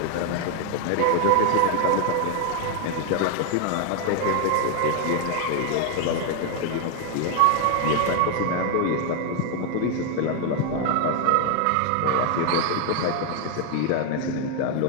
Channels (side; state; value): both; different; correlation 0.01